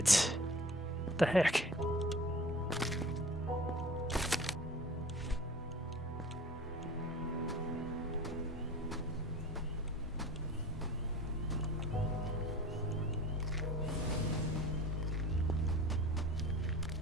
What the heck?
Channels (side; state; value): both; normal; correlation 0.41